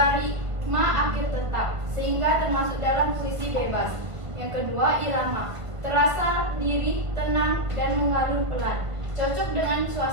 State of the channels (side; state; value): left; late; 1.5 ms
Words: akhir tetap, sehingga termasuk dalam puisi bebas. Yang kedua irama, terasa lirih, tenang, dan mengalun pelan, cocok dengan